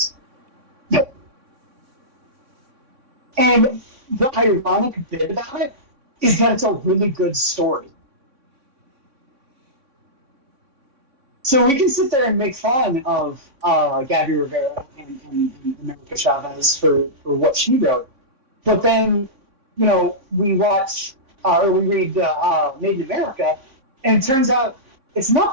And the ironic bit about it is that it's a really good story. So we can sit there and make fun of Gabby Rivera and America Chavez for what she wrote, but then, you know, we watch or we read Made in America, and it turns out it's not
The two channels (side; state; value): left; late; 3.5 ms